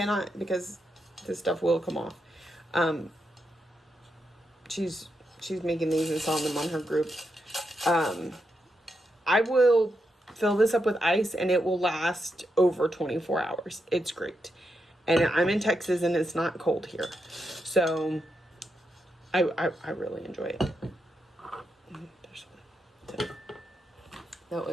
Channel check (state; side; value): normal; both; correlation 0.84